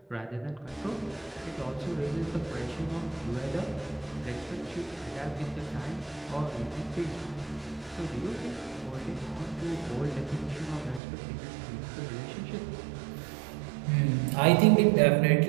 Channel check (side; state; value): left; drops out; at 11.0 s